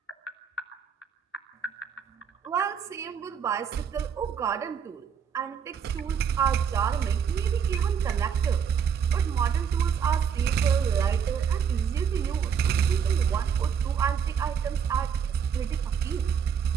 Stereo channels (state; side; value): quieter; left; 7.3 dB